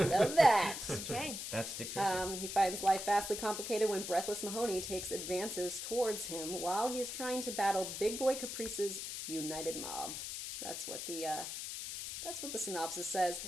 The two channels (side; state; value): left; noise; hiss, 6 dB below the sound